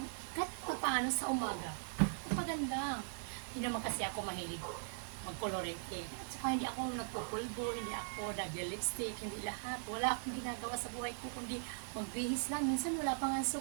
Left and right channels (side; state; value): left; silent; digital silence